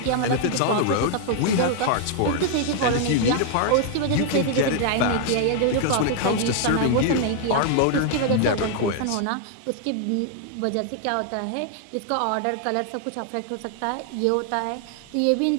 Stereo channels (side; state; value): both; different; correlation 0.00